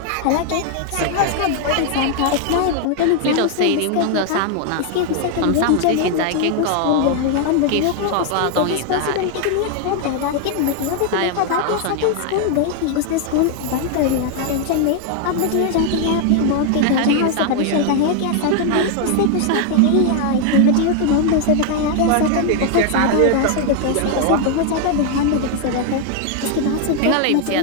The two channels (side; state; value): both; different; correlation 0.00